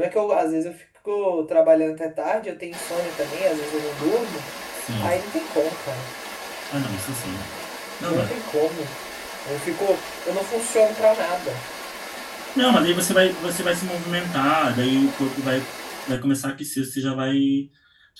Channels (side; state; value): both; identical; correlation 1.00